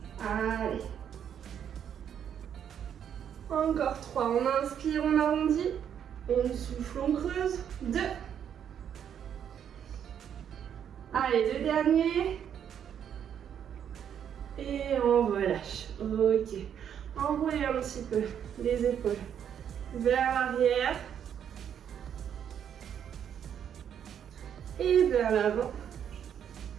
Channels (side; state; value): left; quieter; 8.8 dB